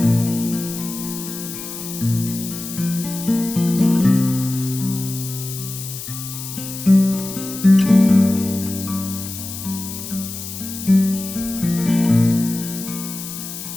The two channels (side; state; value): left; noise; hiss, 9 dB below the sound